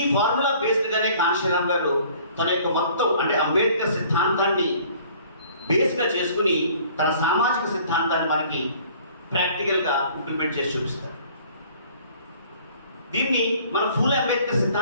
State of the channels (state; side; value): inverted; both; correlation -0.54